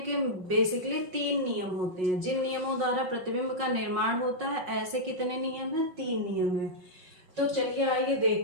बेसिकली 3 नियम होते हैं। जिन नियमों द्वारा प्रतिबिंब का निर्माण होता है, ऐसे कितने नियम हैं? 3 नियम हैं। तो चलिए आइए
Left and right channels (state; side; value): late; left; 5.5 ms